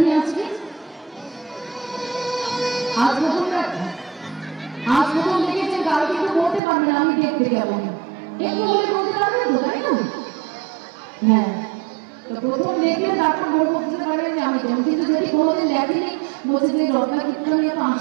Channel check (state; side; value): drops out; left; at 6.6 s